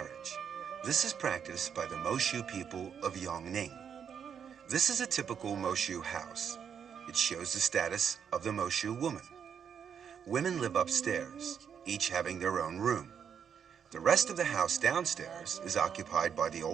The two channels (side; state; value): left; quieter; 7.6 dB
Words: This is practiced by the Moshu people of Yongning. This is a typical Moshu house. It shows the status of the Moshu woman. Women live upstairs, each having their own room. The rest of the house downstairs is occupied by the